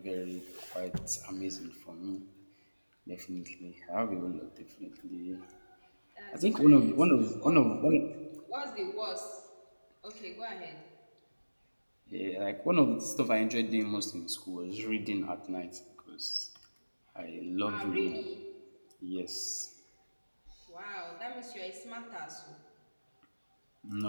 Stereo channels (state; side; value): inverted; both; correlation -1.00